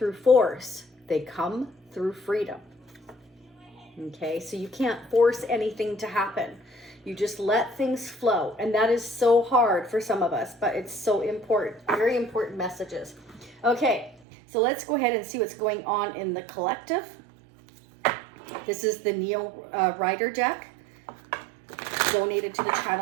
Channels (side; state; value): left; drops out; at 14.2 s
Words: force. They come through freedom. Okay, so you can't force anything to happen. You just let things flow. And that is so hard for some of us, but it's so important. Very important messages. Okay, so let's go ahead and see what's going on in the collective. This is the Neo Rider deck, donated to the